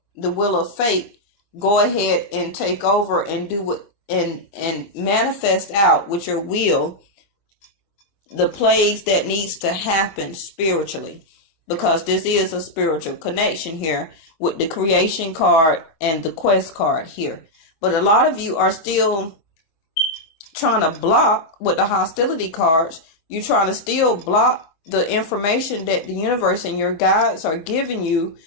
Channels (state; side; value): late; right; 25 ms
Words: the will of fate, go ahead and take over and do what and manifest out with your will the plays that needs to happen spiritually, because this is a spiritual connection here with the creation card and the quest card here. But a lot of you are still trying to block with the hostility cards. You're trying to still block the information that the universe and your guides are giving you